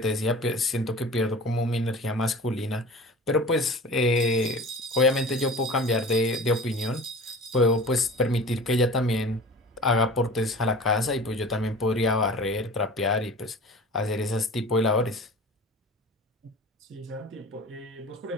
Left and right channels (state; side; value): normal; both; correlation 0.40